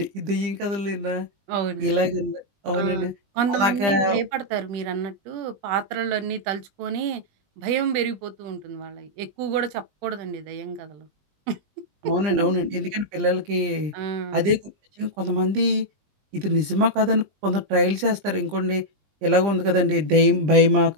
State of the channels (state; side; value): late; left; 20 ms